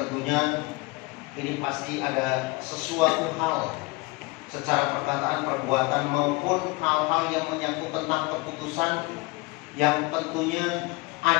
ini pasti ada sesuatu hal secara perkataan, perbuatan maupun hal-hal yang menyangkut tentang keputusan yang tentunya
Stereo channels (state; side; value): quieter; right; 24.5 dB